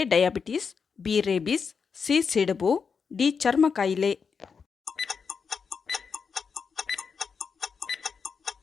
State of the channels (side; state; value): right; quieter; 5.8 dB